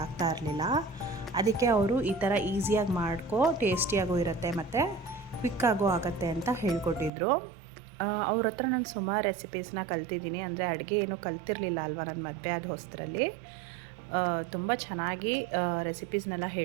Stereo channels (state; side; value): drops out; left; at 7.1 s